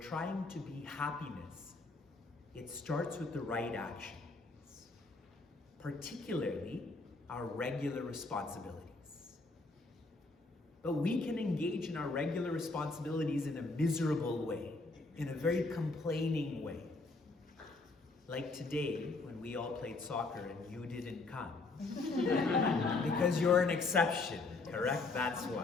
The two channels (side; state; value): right; quieter; 3.5 dB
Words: to be happiness, it starts with the right actions, particularly our regular responsibilities. But we can engage in our regular responsibilities in a miserable way, in a very complaining way. Like today, when we all played soccer and you didn't come. Because you're an exception, correct? That's